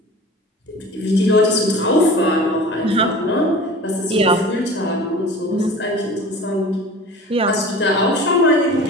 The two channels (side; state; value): both; normal; correlation 0.39